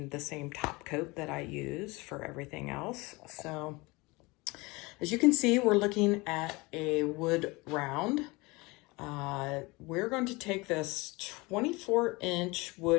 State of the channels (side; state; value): right; quieter; 24.3 dB